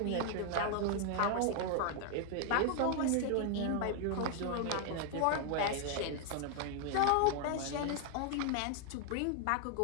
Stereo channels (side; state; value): both; different; correlation 0.00